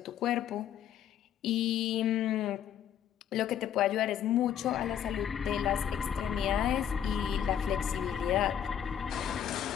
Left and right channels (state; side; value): quieter; right; 9.6 dB